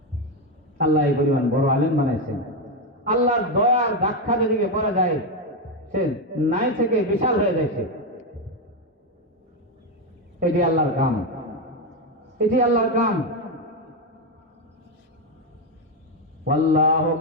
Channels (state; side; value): normal; both; correlation 0.08